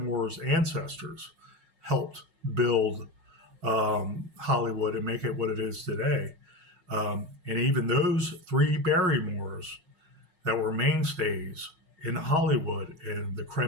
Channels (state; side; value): late; left; 5.4 ms